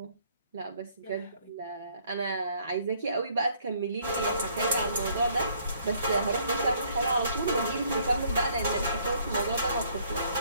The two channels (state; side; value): inverted; both; correlation -0.64